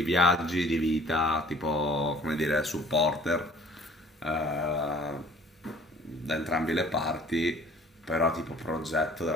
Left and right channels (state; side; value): normal; both; correlation 0.52